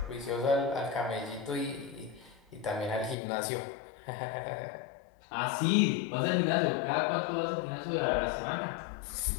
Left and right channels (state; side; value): drops out; right; at 3.2 s